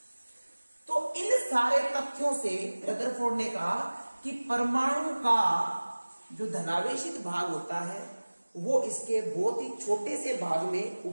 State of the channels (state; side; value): inverted; both; correlation -1.00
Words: तो इन सारे तथ्यों से रदरफोर्ड ने कहा कि परमाणु का जो धनावेशित भाग होता है वो इसके बहुत ही छोटे से भाग में